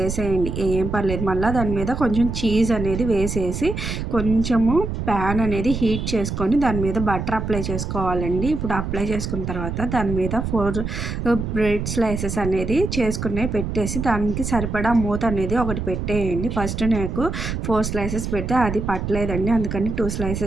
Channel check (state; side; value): noise; right; rumble, 4 dB below the sound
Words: ఏం పర్లేదు. మళ్ళీ దాని మీద కొంచెం చీజ్ అనేది వేసేసి కొంచెము ప్యాన్ అనేది హీట్ చేసుకొని దాని మీద బటర్ అప్లై చేసుకోవాలండి. ఇప్పుడు అప్లై చేసుకున్న తర్వాత దాని మీద 4 బ్రెడ్ స్లైసెస్ అనేది చేసుకునే పెట్టేసి దానికి సరిపడా మూత అనేది ఒకటి పెట్టేయండి. ఫస్ట్ నాకు 4 స్లైసెస్ పెడితే అది పట్టలేదండి. అందుకని 2